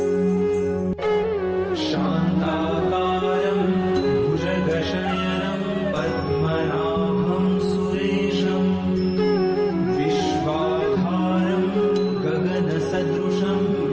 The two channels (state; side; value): identical; both; correlation 1.00